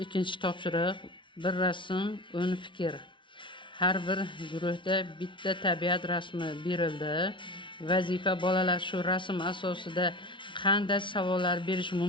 Ikkinchi topshiriq bir rasm, 10 fikr. Har bir guruhda bitta tabiat rasmi berildi. Vazifa bolalar shu rasm asosida qanday savollar berish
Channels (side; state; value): right; late; 0.24 ms